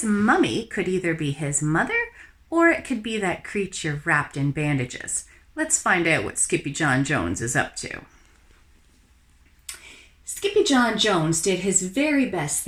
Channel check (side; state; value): both; identical; correlation 1.00